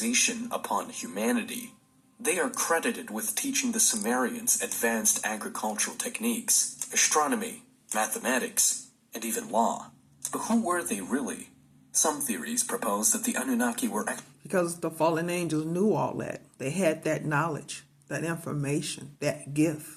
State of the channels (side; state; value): both; identical; correlation 1.00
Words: upon humanity. They are credited with teaching the Sumerians advanced agricultural techniques, astronomy, mathematics, and even law. But who were they really? Some theories propose that the Anunnaki were Because the fallen angels knew all that. They had that knowledge, that information, that